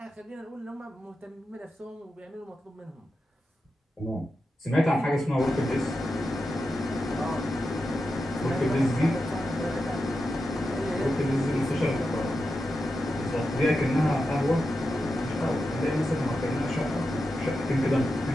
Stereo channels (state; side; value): normal; both; correlation 0.89